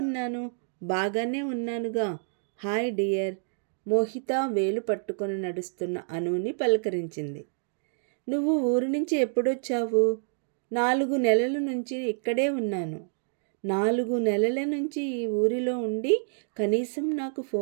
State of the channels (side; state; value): left; silent; digital silence